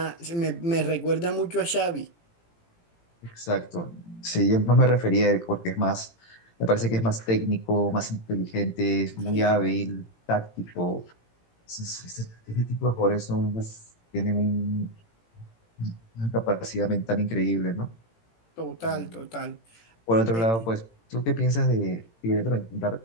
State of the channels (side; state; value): right; late; 18 ms